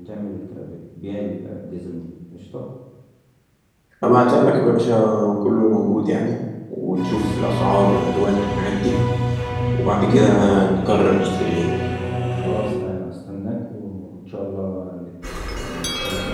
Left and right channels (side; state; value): both; identical; correlation 1.00